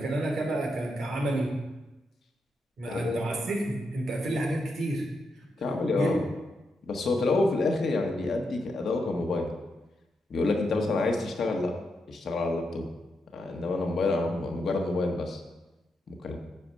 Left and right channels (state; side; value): normal; both; correlation 0.83